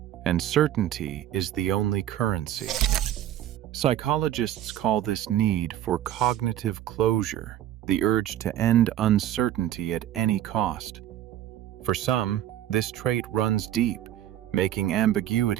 and certainty is the only currency. Psychologists call this need for cognitive closure, the urge to end uncertainty at any cost. For some, this trait runs deep, making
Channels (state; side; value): quieter; left; 12.0 dB